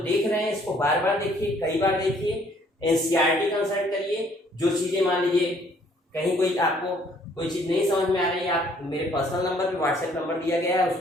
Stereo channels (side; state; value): both; normal; correlation 0.62